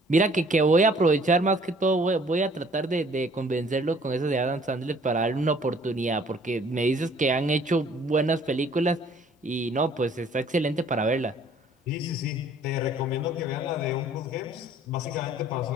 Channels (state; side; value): normal; both; correlation 0.57